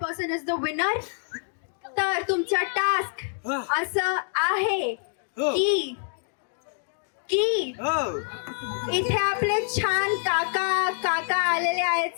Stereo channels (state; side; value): silent; right; digital silence